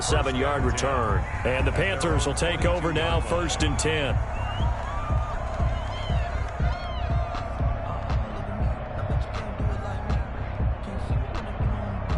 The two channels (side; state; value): both; identical; correlation 1.00